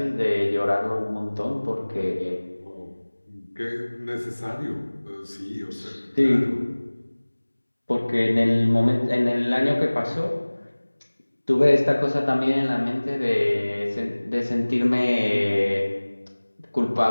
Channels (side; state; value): both; inverted; correlation -1.00